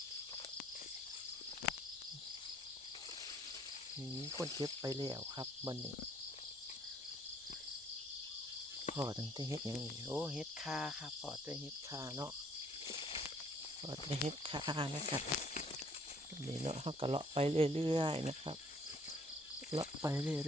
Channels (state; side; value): normal; both; correlation 0.61